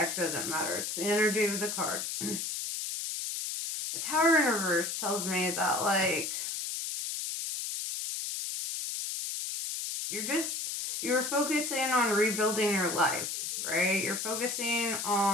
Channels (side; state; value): left; noise; hiss, 3 dB below the sound